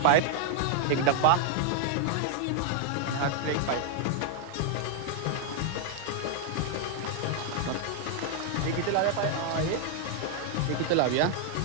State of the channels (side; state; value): both; different; correlation 0.00